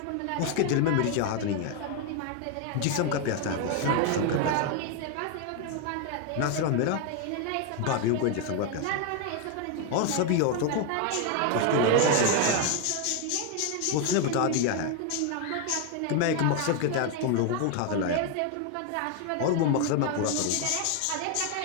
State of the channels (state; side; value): different; both; correlation 0.01